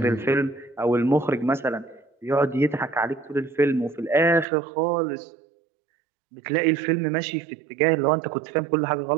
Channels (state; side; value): drops out; left; at 4.5 s